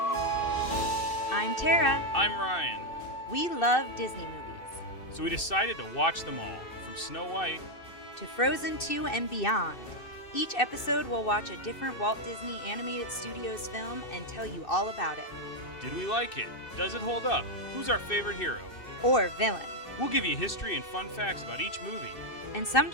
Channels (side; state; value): right; late; 2.6 ms